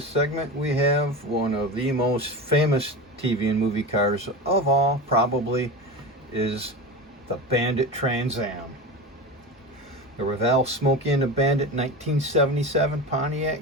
segment, we have one of the most famous TV and movie cars of all, probably, is the Bandit Trans Am. The Revell Smokey and the Bandit 1977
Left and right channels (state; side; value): normal; both; correlation 0.26